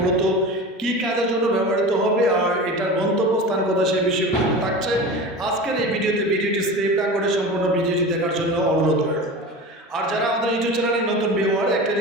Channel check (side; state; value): both; normal; correlation 0.32